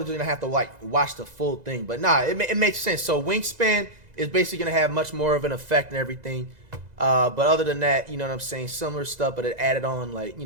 gonna have to like watch the full thing, but nah, it makes sense. So wingspan is basically gonna have much more of an effect and everything. But other than that, you know what I'm saying, similar stuff, but it added on like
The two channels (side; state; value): left; late; 2.0 ms